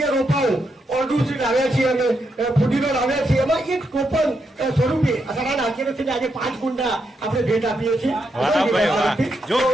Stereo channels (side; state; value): both; normal; correlation 0.82